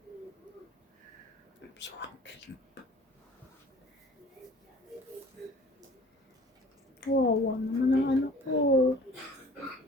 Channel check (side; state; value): both; normal; correlation 0.48